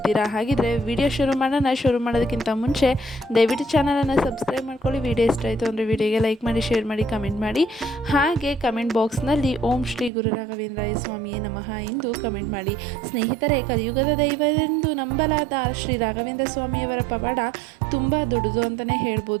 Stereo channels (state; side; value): drops out; left; at 10.1 s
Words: ಹಾಗಿದ್ರೆ ವಿಡಿಯೋ ಶುರು ಮಾಡೋಣ. ಶುರು ಮಾಡೋದಕ್ಕಿಂತ ಮುಂಚೆ ದಯವಿಟ್ಟು ಚಾನಲನ್ನು ಸಬ್ಸ್ಕ್ರೈಬ್ ಮಾಡ್ಕೊಳ್ಳಿ. ವಿಡಿಯೋ ಇಷ್ಟ ಆಯಿತು ಅಂದರೆ ವಿಡಿಯೋಗೆ ಲೈಕ್ ಮಾಡಿ, ಶೇರ್ ಮಾಡಿ, ಕಮೆಂಟ್ ಮಾಡಿ. ಹಾಗೆ ಕಮೆಂಟ್ ಬಾಕ್ಸ್ನಲ್ಲಿ ಓಂ ಶ್ರೀ ಗುರು ರಾಘವೇಂದ್ರಾಯ ಸ್ವಾಮಿಯೇ ನಮಃ ಎಂದು ಕಮೆಂಟ್ ಮಾಡಿ. ಸ್ನೇಹಿತರೆ, ಕಲಿಯುಗದ ದೈವವೆಂದು ನಂಬಲಾದ ಶ್ರೀ ರಾಘವೇಂದ್ರ ಸ್ವಾಮಿಯವರ ಪವಾಡ ತುಂಬ ದೊಡ್ಡದು ಅಂತಲೇ